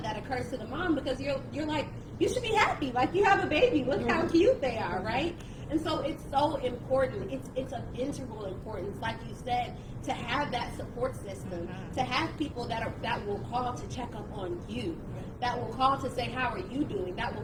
that occurs to the mom, because you're like, you should be happy. Like, you have a baby. Look how cute they are, right? And so it's so important. It's of integral importance, like you said, to have that support system, to have people that will call to check up on you, that will call to say, how are you doing? That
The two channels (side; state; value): both; identical; correlation 1.00